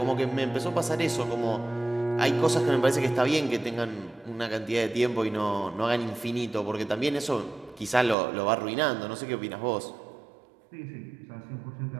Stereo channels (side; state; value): left; drops out; at 8.2 s